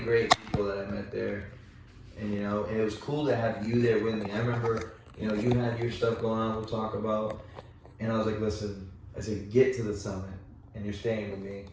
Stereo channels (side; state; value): both; identical; correlation 1.00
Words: people that I met there. And, you know, and it was cool to have you there with me. I remember, you know, you had your stuff going on, we'll talk about. And I was like, listen, I said, get to the summit and you're staying with me.